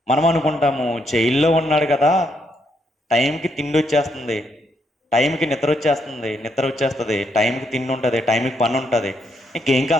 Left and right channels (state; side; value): normal; both; correlation 0.76